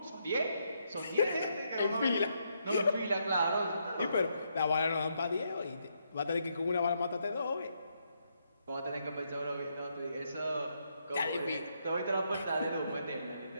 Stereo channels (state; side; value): inverted; both; correlation -0.78